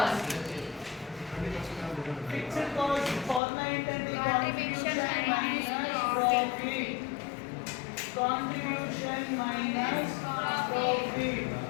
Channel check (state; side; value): drops out; right; at 3.4 s